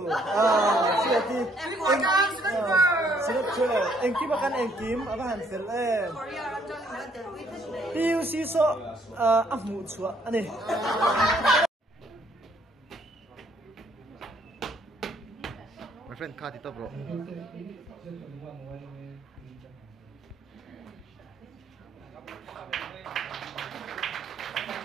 siati engkim akan engkim apa hansel PUC so afmu chua ani my friend card itu bro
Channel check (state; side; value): normal; both; correlation 0.66